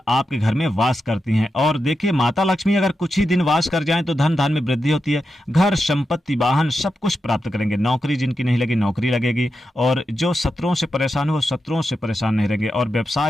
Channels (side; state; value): both; normal; correlation 0.88